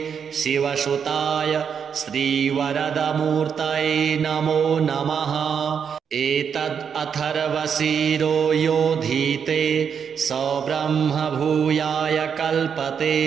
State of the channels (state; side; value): quieter; left; 7.1 dB